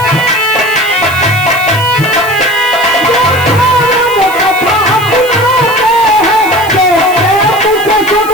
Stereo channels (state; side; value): noise; right; hiss, 15 dB below the sound